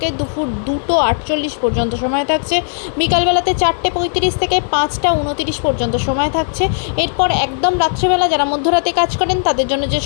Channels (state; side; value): silent; right; digital silence